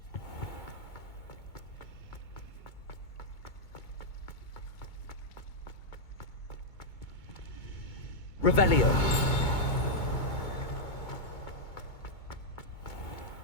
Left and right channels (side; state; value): right; late; 2.2 ms